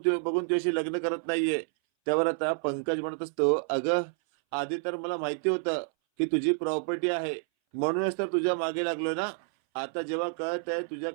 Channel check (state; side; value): silent; left; 59 dB below the other